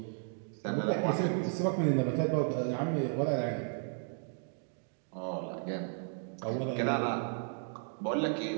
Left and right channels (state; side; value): silent; left; 55 dB below the other